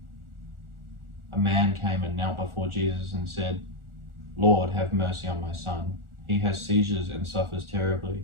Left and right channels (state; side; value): late; left; 1.4 ms